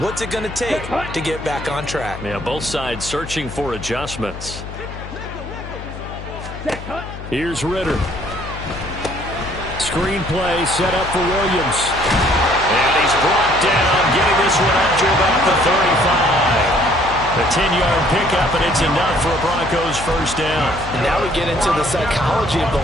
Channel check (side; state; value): left; noise; hum, 11 dB below the sound